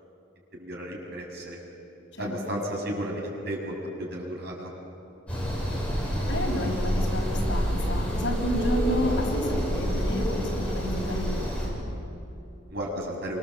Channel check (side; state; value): both; normal; correlation 0.70